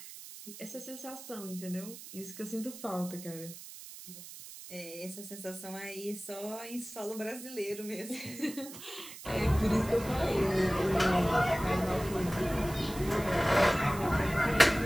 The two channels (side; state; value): right; noise; hiss, 14 dB below the sound